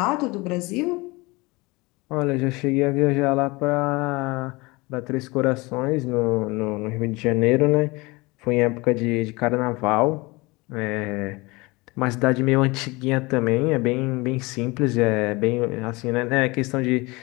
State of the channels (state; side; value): quieter; right; 24.1 dB